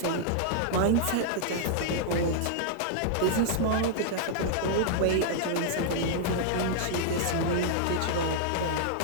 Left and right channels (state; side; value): different; both; correlation -0.01